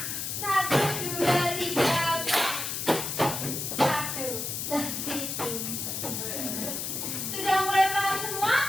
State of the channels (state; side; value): noise; left; hiss, 3 dB below the sound